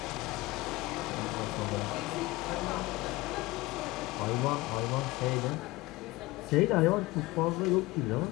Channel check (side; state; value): right; quieter; 20.5 dB